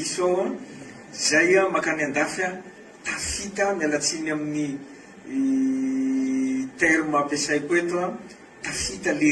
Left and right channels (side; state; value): both; identical; correlation 1.00